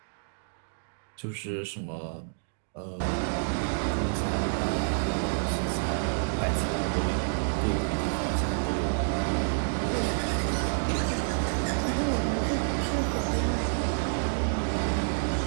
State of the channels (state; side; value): silent; left; digital silence